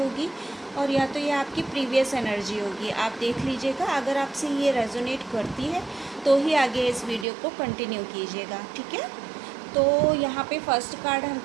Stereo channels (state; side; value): drops out; left; at 7.2 s